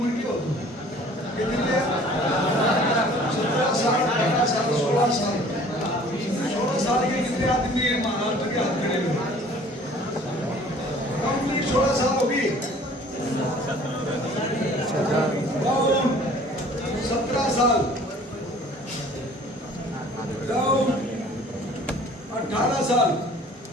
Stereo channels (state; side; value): normal; both; correlation 0.51